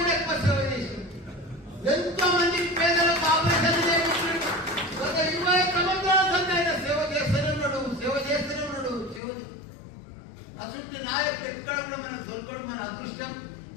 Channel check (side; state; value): right; drops out; at 9.2 s